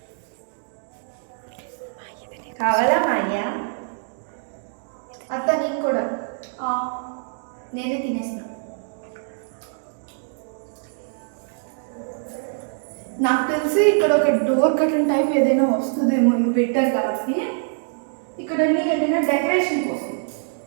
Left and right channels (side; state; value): left; silent; 63 dB below the other